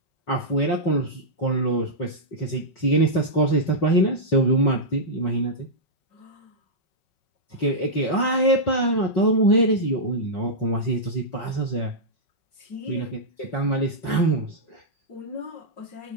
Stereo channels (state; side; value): late; right; 5.4 ms